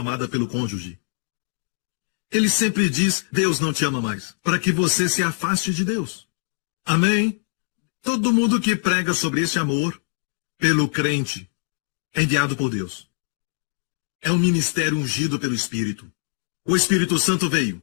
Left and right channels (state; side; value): silent; right; digital silence